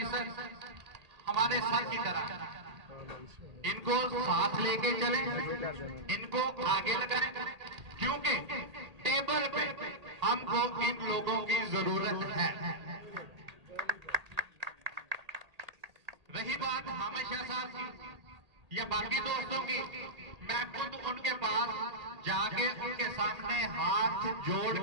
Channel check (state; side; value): late; left; 1.8 ms